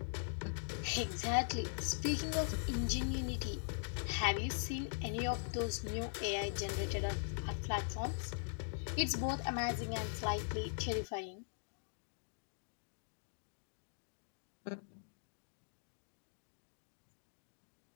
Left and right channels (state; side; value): silent; right; digital silence